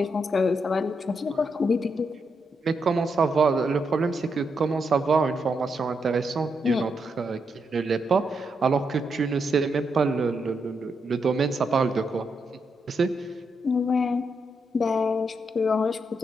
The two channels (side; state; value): both; normal; correlation 0.81